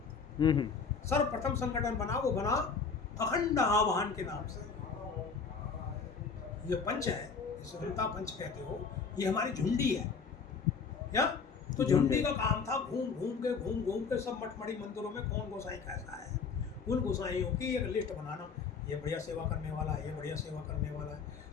सर्वप्रथम संगठन बना, वो बना अखंड आवाहन के नाम से। ये पंच है, जिसे वृंदा पंच कहते हो, ये हमारी झुंडी है। क्या तो झुंडी का काम था घूम घूम के सब मठमढ़ी मंदिरों में कौन गोसाई कैसा है, उन गोसाइयों की एक लिस्ट बनाना। ये बढ़िया सेवा करने वाला है, ये बढ़िया सेवा करने वाला है।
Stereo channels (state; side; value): quieter; right; 5.4 dB